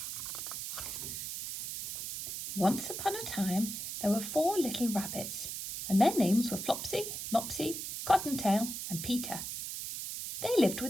Once upon a time, there were 4 little rabbits, and their names were Flopsy, Mopsy, Cottontail, and Peter. They lived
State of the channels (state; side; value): noise; right; hiss, 6 dB below the sound